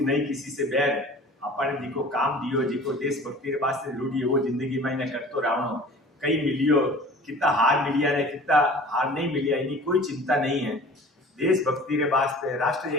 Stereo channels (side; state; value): both; normal; correlation 0.44